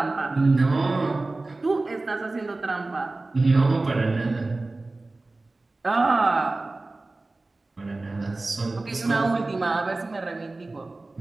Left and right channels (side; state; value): left; quieter; 3.1 dB